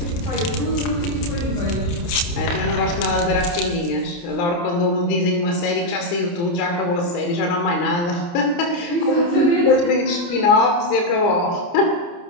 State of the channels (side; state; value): right; late; 29 ms